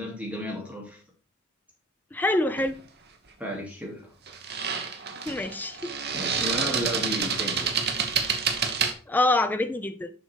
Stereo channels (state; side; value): normal; both; correlation 0.39